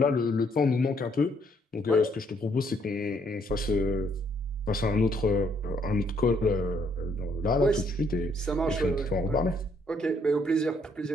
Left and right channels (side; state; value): both; normal; correlation 0.69